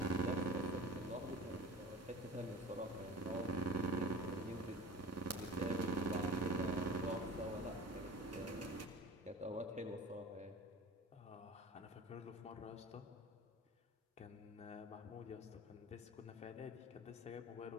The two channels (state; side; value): normal; both; correlation 0.38